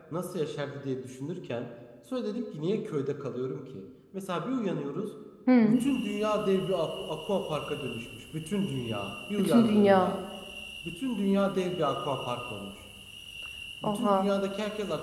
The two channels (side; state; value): both; identical; correlation 1.00